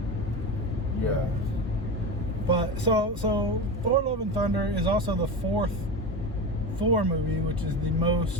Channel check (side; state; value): both; normal; correlation 0.23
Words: Yeah. But so Thor: Love and Thunder is also the fourth Thor movie, which is the